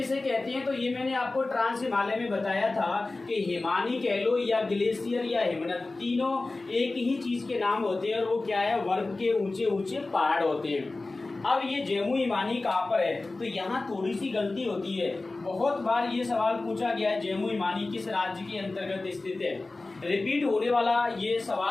कहते हैं, तो ये मैंने आपको ट्रांस हिमालय में बताया था कि हिमानी कह लो या ग्लेशियर या हिमनद, तीनों एक ही चीज के नाम होते हैं और वो क्या है, वर्ग के ऊंचे ऊंचे पहाड़ होते हैं। अब ये जेमू हिमानी कहाँ पर है, तो यहाँ थोड़ी सी गलती होती है। बहुत बार ये सवाल पूछा गया है, जेमू हिमानी किस राज्य के अंतर्गत स्थित है। रिपीट होने वाला ये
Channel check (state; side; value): quieter; right; 3.3 dB